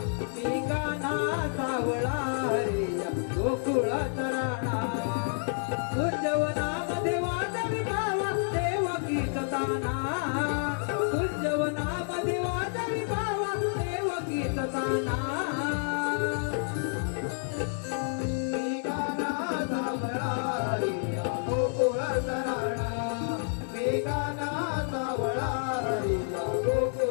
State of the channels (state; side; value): silent; right; 58 dB below the other